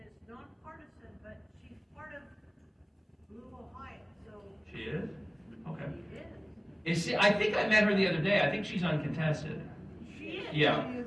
it's nonpartisan, but she's part of Blue Ohio, so. She is? Okay. She is. I think I met her the other day. I think she's uncontested. She is. Yeah.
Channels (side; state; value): both; identical; correlation 1.00